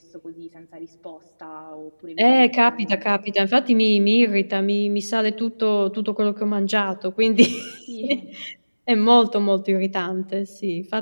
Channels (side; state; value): both; inverted; correlation -1.00